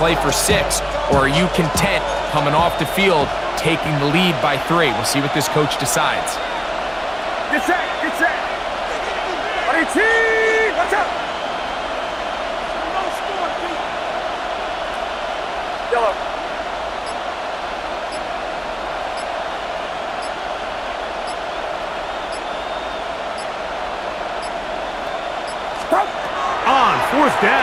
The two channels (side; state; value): both; identical; correlation 1.00